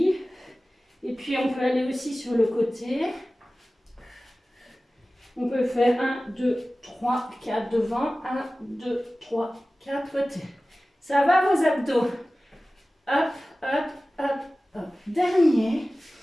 Et puis on peut aller aussi sur le côté. On peut faire 1, 2, 3, 4 devant. 1, 2, 3, 4 côté. Ça va vos abdos? Hop, hop, hop, hop. Dernier.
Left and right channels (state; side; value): normal; both; correlation 0.97